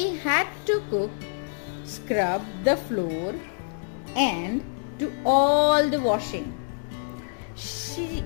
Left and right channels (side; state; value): right; silent; digital silence